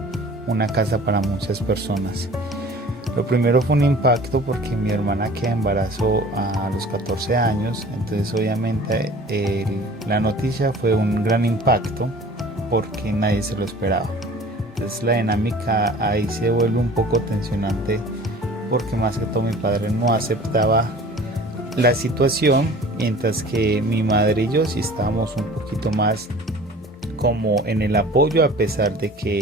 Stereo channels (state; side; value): normal; both; correlation 0.45